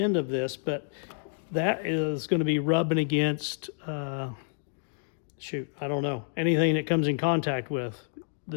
of this, but that is going to be rubbing against, I don't know, anything that comes in contact with.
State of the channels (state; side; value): silent; right; digital silence